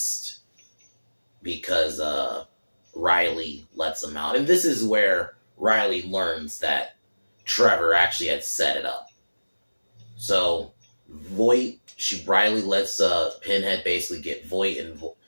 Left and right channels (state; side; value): inverted; both; correlation -1.00